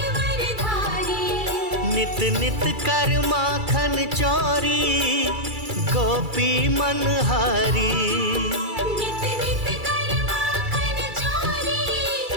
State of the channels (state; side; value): late; left; 2.3 ms